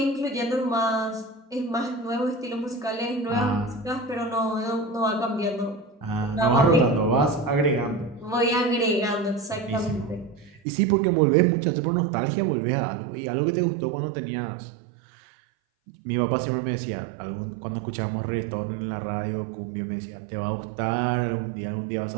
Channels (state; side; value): drops out; left; at 10.6 s